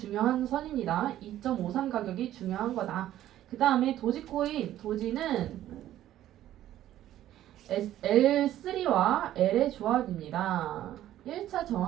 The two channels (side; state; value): left; quieter; 12.9 dB